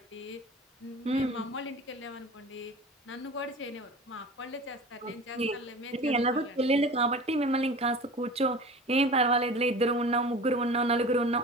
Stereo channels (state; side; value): normal; both; correlation 0.37